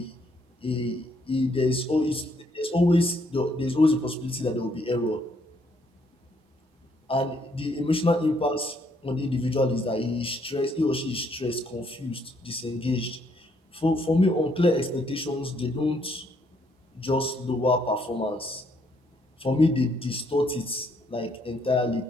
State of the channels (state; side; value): normal; both; correlation 0.70